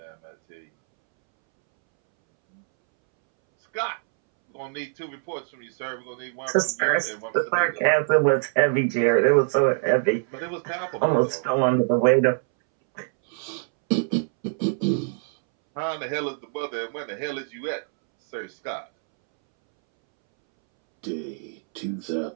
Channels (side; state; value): left; silent; 62 dB below the other